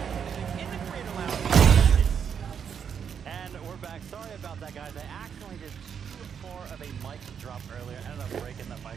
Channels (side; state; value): left; quieter; 7.5 dB